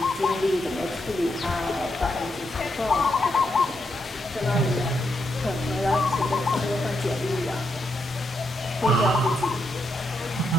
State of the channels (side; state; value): both; normal; correlation 0.81